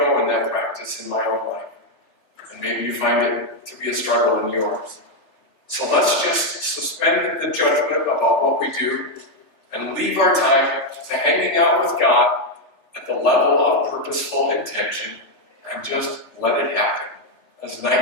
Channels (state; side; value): late; right; 3.4 ms